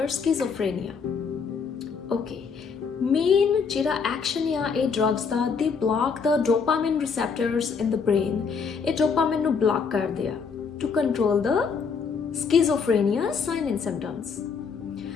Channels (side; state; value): right; quieter; 5.7 dB